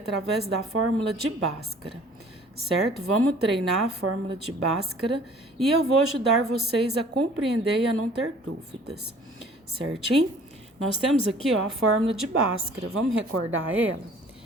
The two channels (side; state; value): both; normal; correlation 0.52